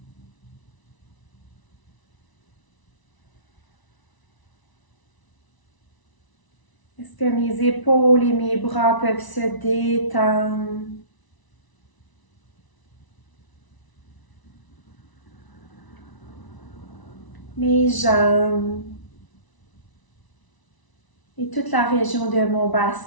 Est-ce que mes épaules et mes bras peuvent se détendre? Mes jambes et toute la région de mon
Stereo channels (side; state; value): right; late; 1.0 ms